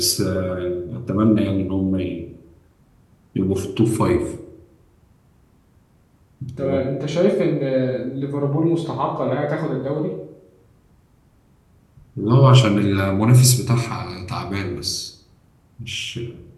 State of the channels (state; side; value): identical; both; correlation 1.00